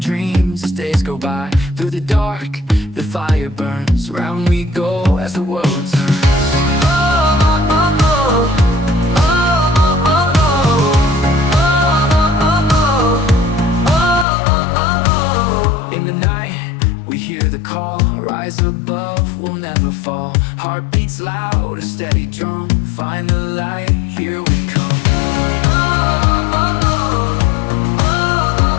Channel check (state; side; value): drops out; right; at 14.2 s